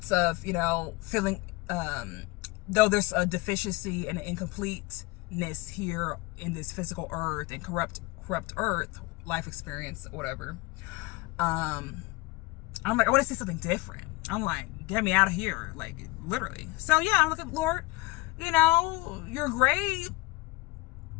of, feeling, though there's a deficiency and an incompleteness here in this physical earth and corrupt earth, life experience, whatever. I'm like, I want to see something different. I'm like, get me out of here, like literally. So yeah, I'm like, Lord, you're great.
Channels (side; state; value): right; quieter; 21.9 dB